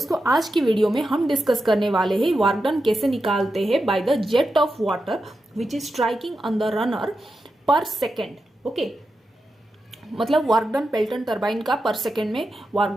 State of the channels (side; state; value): both; normal; correlation 0.89